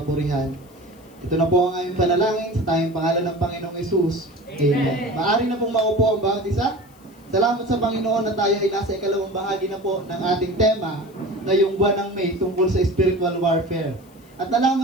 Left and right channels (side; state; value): left; noise; hiss, 29 dB below the sound